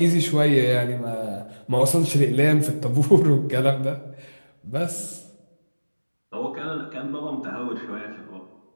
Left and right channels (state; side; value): inverted; both; correlation -1.00